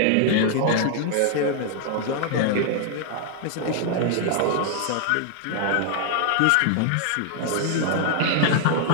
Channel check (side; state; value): both; different; correlation 0.00